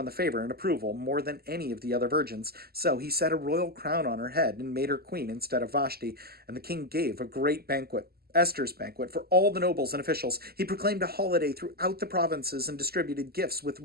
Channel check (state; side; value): late; left; 0.45 ms